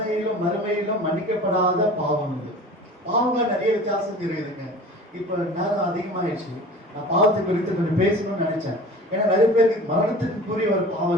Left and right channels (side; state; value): both; normal; correlation 0.40